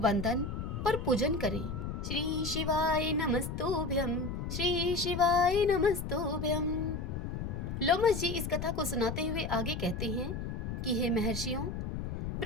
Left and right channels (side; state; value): left; noise; rumble, 4 dB below the sound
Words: और पूजन करें। श्री शिवाय नमस्तुभ्यं, श्री शिवाय नमस्तुभ्यं। लोमस जी इस कथा को सुनाते हुए आगे कहते हैं कि हे महर्षियों,